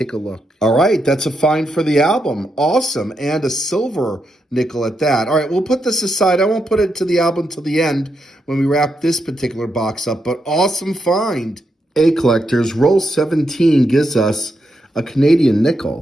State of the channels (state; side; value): normal; both; correlation 0.83